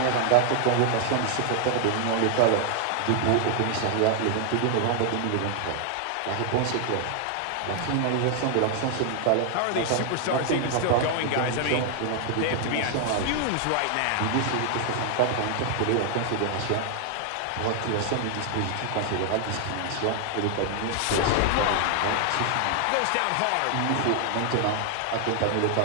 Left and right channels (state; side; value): different; both; correlation 0.00